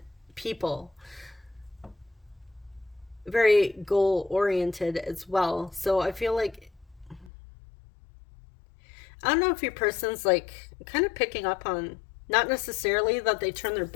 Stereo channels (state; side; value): drops out; right; at 7.3 s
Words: people. Very goal-oriented as well. So I feel like, I don't know if your person's like kind of picking up on, not necessarily that they turn their